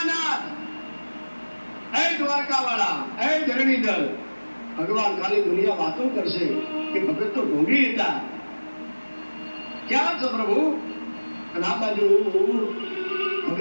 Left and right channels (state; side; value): inverted; both; correlation -1.00